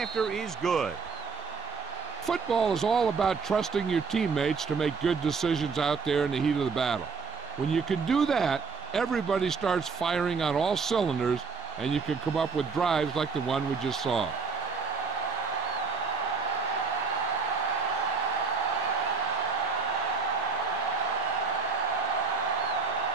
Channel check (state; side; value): quieter; left; 4.9 dB